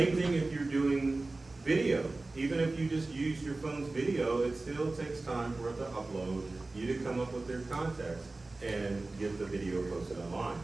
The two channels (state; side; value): quieter; left; 3.2 dB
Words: thing if you're doing video. Even if you just use your phone's video, it still takes time for it to upload, you to come up with their context and get the video posted online.